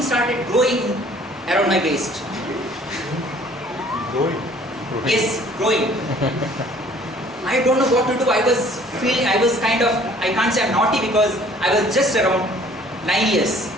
started growing around my waist. Growing. Yes, growing. I don't know what to do. I was feeling, I was kind of, I can't say I'm naughty because I was just around 9 years.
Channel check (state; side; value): normal; both; correlation 0.55